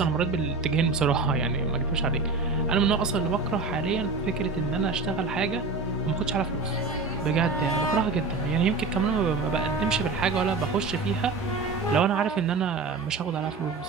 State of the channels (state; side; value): quieter; left; 4.0 dB